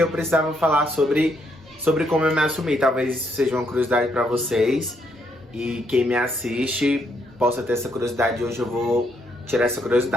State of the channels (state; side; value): normal; both; correlation 0.74